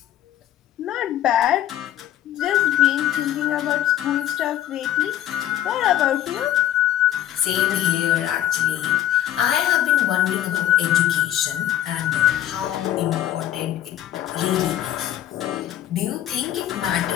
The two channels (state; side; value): quieter; right; 12.2 dB